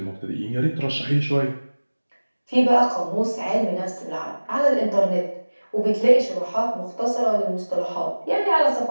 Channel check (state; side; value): inverted; both; correlation -1.00